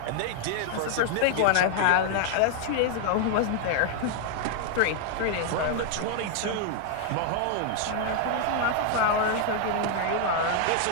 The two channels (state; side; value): different; both; correlation 0.00